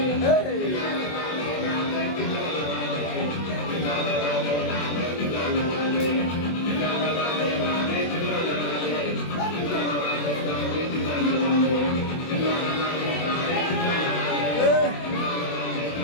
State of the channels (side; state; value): right; late; 24 ms